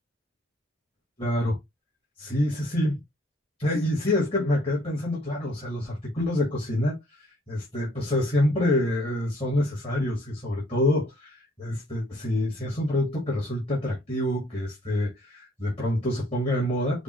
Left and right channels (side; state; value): both; normal; correlation 0.63